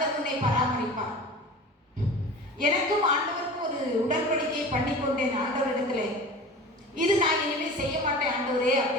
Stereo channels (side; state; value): both; normal; correlation 0.37